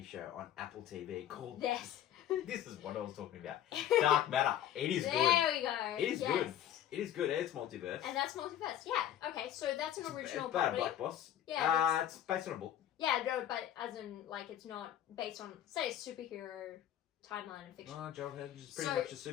show on Apple TV called... Yes. This is what I was talking about. Dark Matter. It is good. There we go. It is good. It is good. It's multiverse. And that's multiverse. Yeah. Okay, so that's an original It's about property. a black boss. Yeah. It's based on a book. Yeah, no, but as in, it's not based on, say, a superhero timeline and fiction. Oh, John Hedge is pretty much a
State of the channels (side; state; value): right; quieter; 11.2 dB